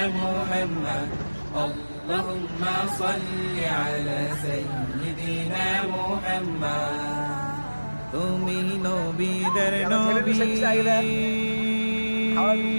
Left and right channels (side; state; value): both; inverted; correlation -1.00